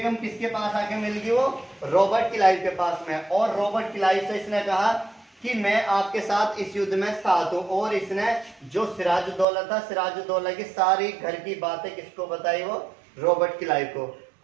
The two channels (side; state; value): left; drops out; at 9.5 s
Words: किसके पास आके मिल गई, वो रॉबर्ट क्लाइव के पास में। और रॉबर्ट क्लाइव से इसने कहा कि मैं आपके साथ इस युद्ध में साथ हूं। और इसने जो सिराजुद्दौला था, सिराजुद्दौला की सारी घर की बातें किसको बताई, वो रॉबर्ट क्लाइव को।